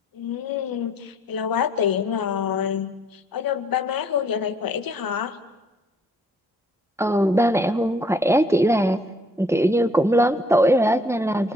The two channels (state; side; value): normal; both; correlation 0.63